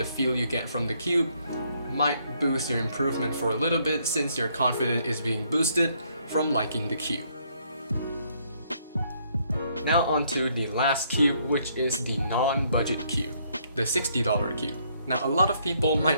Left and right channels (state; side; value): inverted; both; correlation -0.69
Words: feel you get from the cube might boost your improvement for a little bit since your confidence is being boosted from liking the cube. Now onto the last cube, which is the non-budget cube, the $60 cube. Now a lot of people